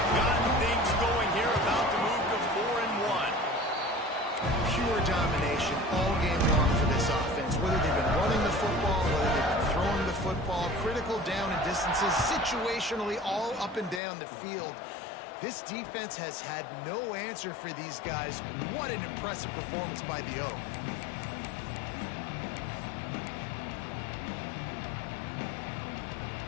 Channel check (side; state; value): right; drops out; at 14.0 s